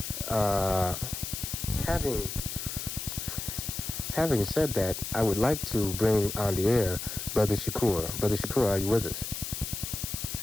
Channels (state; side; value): noise; left; hiss, 6 dB below the sound